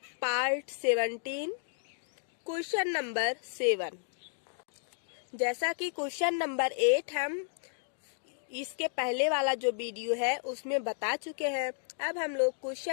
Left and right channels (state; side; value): silent; right; digital silence